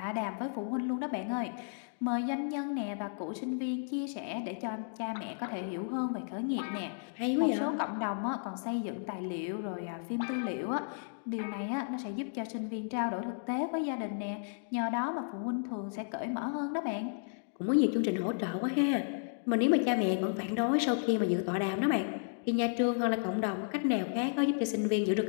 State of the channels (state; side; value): silent; right; digital silence